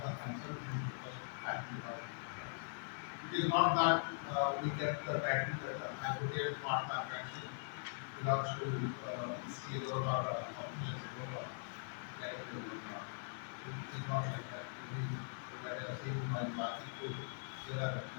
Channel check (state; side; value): silent; right; digital silence